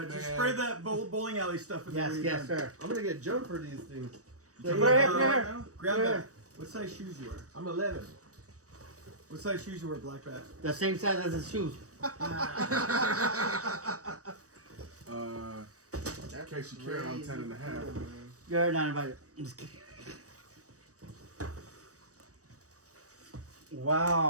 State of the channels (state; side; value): late; left; 0.66 ms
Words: just man. spray that bowling alley stuff in Yes, the yes, sir. I'm gonna get jumped for these things. Put it here, put it here. Grab Put it that. here. What size shoes you wear? I'm 11. What size shoes you wear, Black Bat? The same size as his shoes. In case you care, I'm 10 and a half. You're not invited. I'm just kidding.